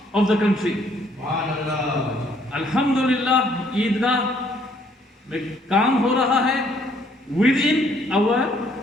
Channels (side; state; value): both; normal; correlation 0.65